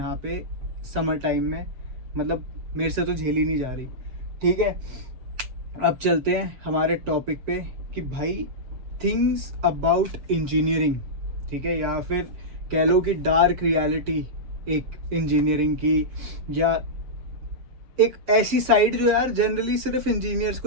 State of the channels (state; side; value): late; left; 7.4 ms